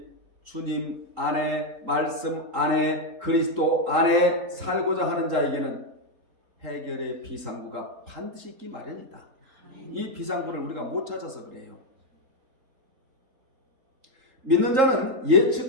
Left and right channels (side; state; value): left; late; 3.8 ms